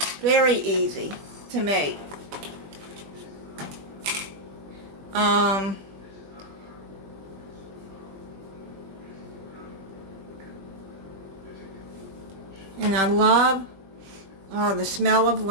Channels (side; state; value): left; late; 20 ms